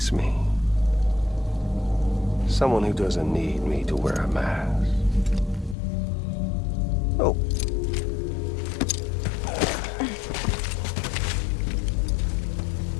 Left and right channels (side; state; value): right; drops out; at 5.8 s